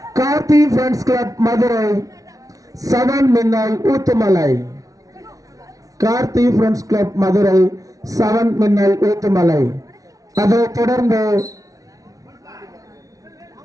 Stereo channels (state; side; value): late; left; 0.17 ms